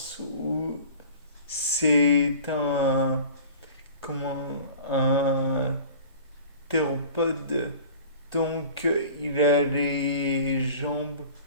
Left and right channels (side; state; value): both; inverted; correlation -0.42